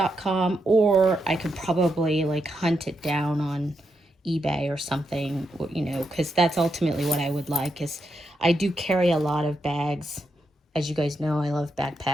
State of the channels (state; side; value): normal; both; correlation 0.83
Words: or I could probably like hunt it down on eBay or something, you know, because that's ultimately what I would like. Is I do carry a lot of bags. As you guys know, I love